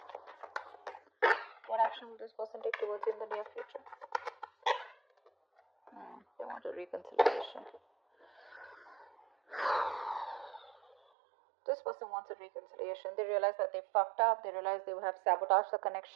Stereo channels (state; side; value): drops out; left; at 11.0 s